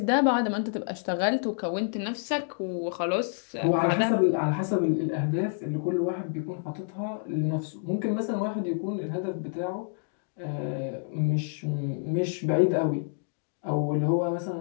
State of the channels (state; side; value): silent; right; digital silence